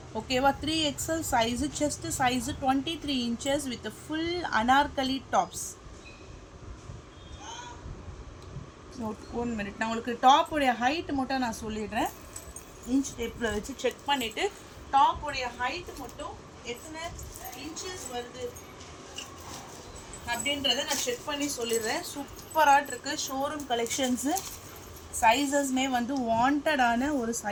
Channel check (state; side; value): identical; both; correlation 1.00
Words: ஓகேவா? 3XL size. Chest size 23 inches with full Anarkali tops. 1 minute நான் உங்களுக்கு டாப்புடைய ஹைட் மட்டும் நான் சொல்லிடுறேன். இன்ச் டேப்பில் வச்சு செக் பண்ணிவிட்டு டாப்புடைய ஹைட் மட்டும் எத்தனை இன்ச்சஸ் வருது அப்படின்றத நான் செக் பண்ணி சொல்லிடுறேன். சூப்பராக இருக்குது. Showroom collections. சைஸஸ்மே வந்து வாண்டடான ஒரு